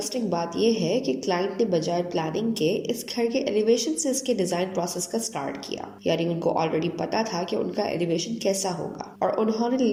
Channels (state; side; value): identical; both; correlation 1.00